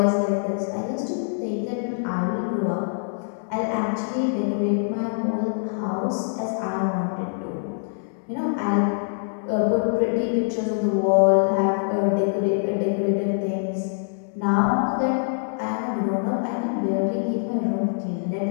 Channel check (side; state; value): right; silent; digital silence